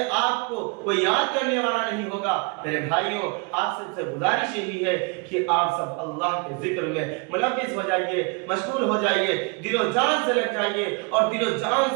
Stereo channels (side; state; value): left; quieter; 31.2 dB